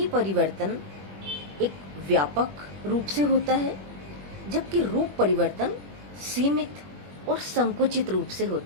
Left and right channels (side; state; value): left; late; 21 ms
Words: परिवर्तन एक व्यापक रूप से होता है, जबकि रूप परिवर्तन सीमित और संकुचित रूप से